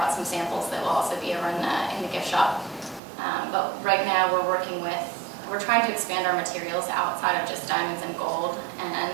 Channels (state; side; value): drops out; left; at 3.0 s